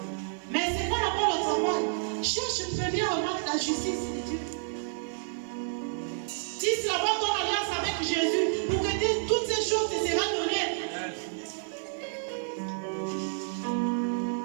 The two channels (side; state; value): left; silent; 57 dB below the other